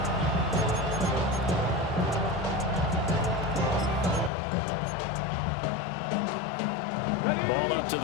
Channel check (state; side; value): drops out; right; at 4.3 s